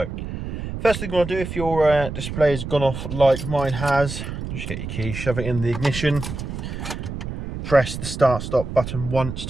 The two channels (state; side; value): noise; right; rumble, 7 dB below the sound